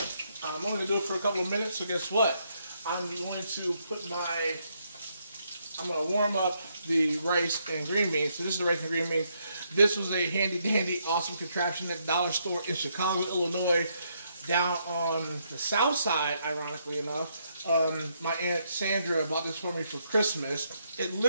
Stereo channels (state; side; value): inverted; both; correlation -0.75